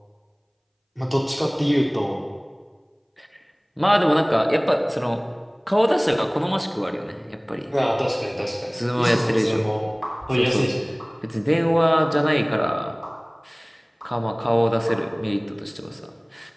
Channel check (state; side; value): identical; both; correlation 1.00